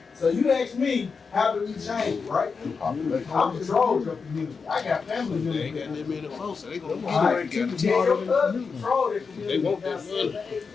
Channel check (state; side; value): quieter; right; 5.2 dB